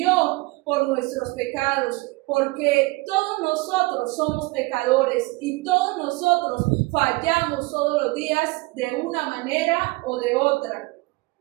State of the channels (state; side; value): quieter; left; 23.5 dB